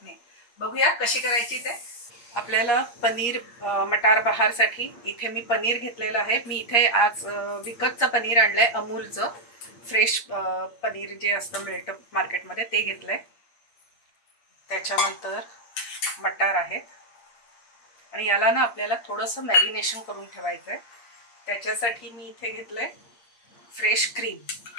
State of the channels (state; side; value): late; right; 8.5 ms